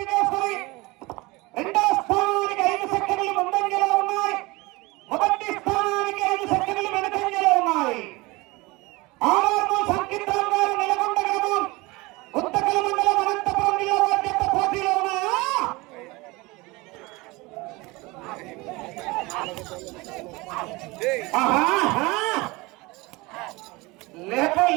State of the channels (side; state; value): left; quieter; 23.3 dB